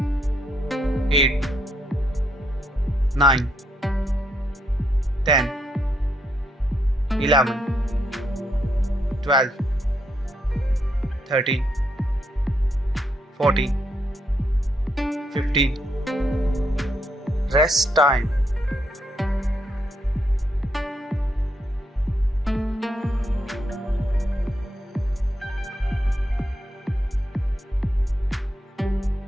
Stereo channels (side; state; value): both; normal; correlation 0.77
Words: 8, 9, 10, 11, 12, 13, 14, 15. Rest time.